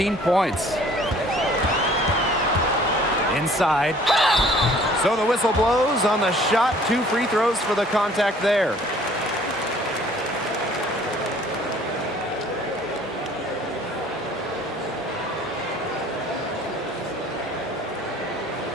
points. Inside. So the whistle blows on the shot. 2 free throws for the contact there.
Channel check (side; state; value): both; normal; correlation 0.54